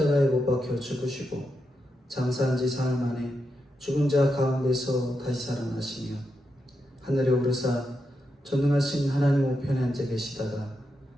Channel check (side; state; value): both; normal; correlation 0.86